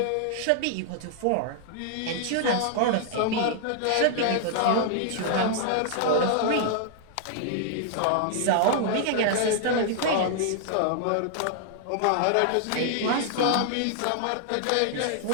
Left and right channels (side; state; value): both; different; correlation -0.01